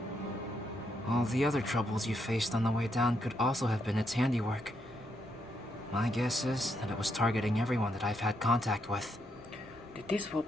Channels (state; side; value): normal; both; correlation 0.78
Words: All the other troubles you faced on the way down could also have been its handiwork. My guess is that it was targeting everyone that I've had contact with. Did this